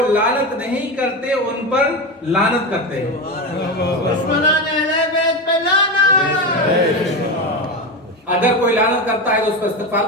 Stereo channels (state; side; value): normal; both; correlation 0.18